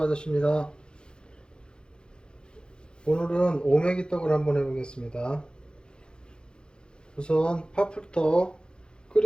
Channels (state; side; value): late; right; 0.049 ms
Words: 오늘은 오메기 떡을 한번 해보겠습니다. 우선 팥부터